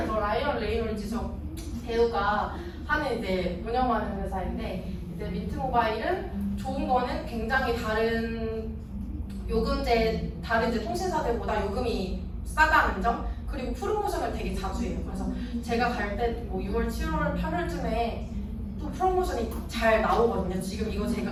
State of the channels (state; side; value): identical; both; correlation 1.00